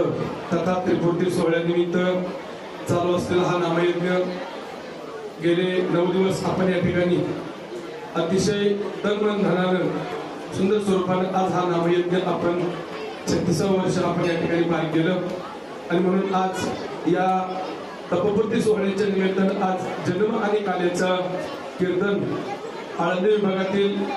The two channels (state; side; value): identical; both; correlation 1.00